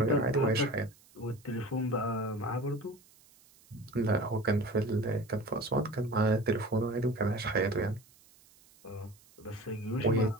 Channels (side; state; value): right; noise; hiss, 28 dB below the sound